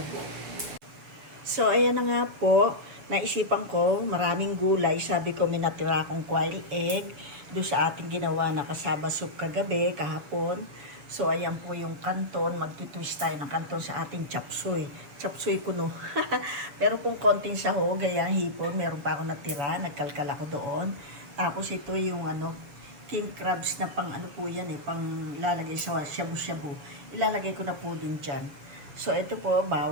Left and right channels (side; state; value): left; late; 7.0 ms